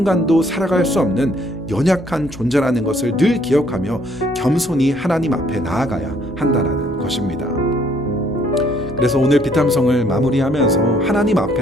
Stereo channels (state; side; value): normal; both; correlation 0.64